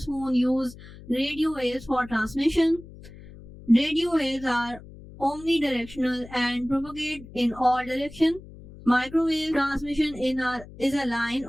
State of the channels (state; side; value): noise; left; hum, 18 dB below the sound